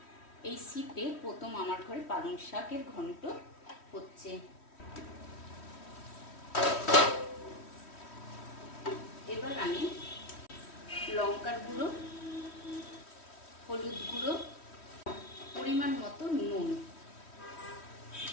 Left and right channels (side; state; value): right; late; 3.1 ms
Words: এই শীতে প্রথম আমার ঘরে পালং শাকের ঘন্ট হচ্ছে। এবার আমি লঙ্কার গুঁড়ো, হলুদ গুঁড়ো, পরিমাণ মতো নুন,